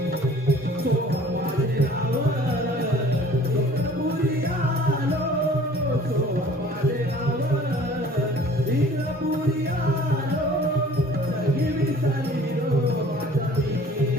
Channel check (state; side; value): normal; both; correlation 0.51